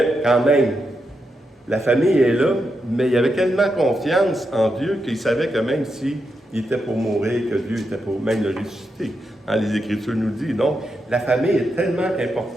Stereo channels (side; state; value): both; normal; correlation 0.85